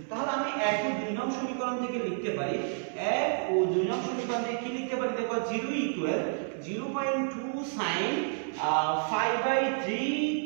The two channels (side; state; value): left; silent; 58 dB below the other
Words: তাহলে আমি 1 ও 2 নং সমীকরণ থেকে লিখতে পারি, 1 ও 2 নং সমীকরণ থেকে কি লিখতে পারি? দেখো, 0 = 0.2 sin